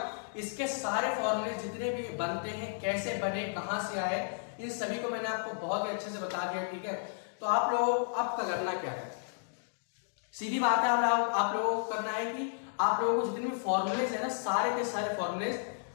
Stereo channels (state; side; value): silent; right; digital silence